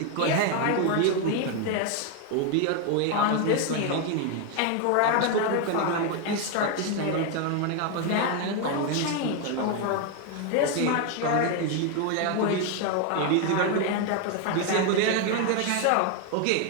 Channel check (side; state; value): both; different; correlation 0.01